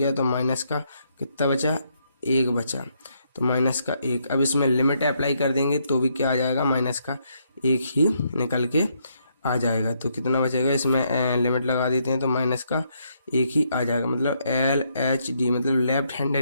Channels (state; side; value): inverted; both; correlation -0.75